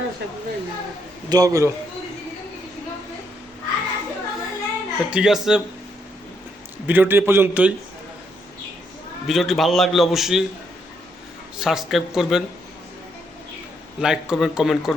দোয়া করো। ঠিক আছে, ভিডিওটি এ পর্যন্তই। ভিডিওটি ভালো লাগলে অবশ্যই সাবস্ক্রাইব করবেন, লাইক করবেন, কমেন্ট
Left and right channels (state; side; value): normal; both; correlation 0.75